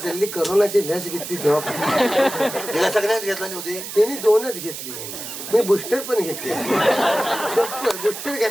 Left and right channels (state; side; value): noise; right; hiss, 9 dB below the sound